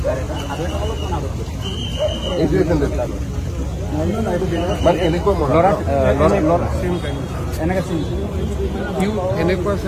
এইটোৱে চেণ্ডেল মানে এনেকুৱা সিও এনেকুৱা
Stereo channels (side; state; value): both; identical; correlation 1.00